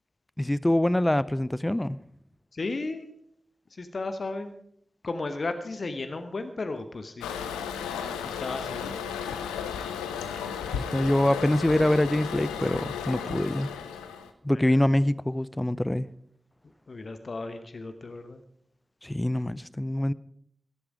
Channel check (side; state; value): both; normal; correlation 0.96